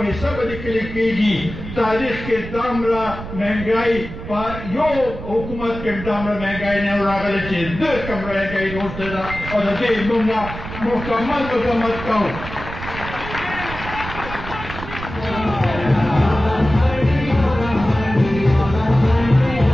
حصه به لیکل کېږي. تاریخ کې دومره مهنګۍ په یو حکومت کې دومره مهنګۍ نه راغلې چې د کوم مهنګۍ وروسته ده او د دې موږ مکمل مذمت کوو.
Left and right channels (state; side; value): noise; right; rumble, 10 dB below the sound